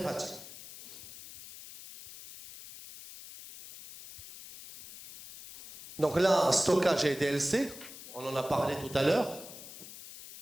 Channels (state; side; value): noise; left; hiss, 15 dB below the sound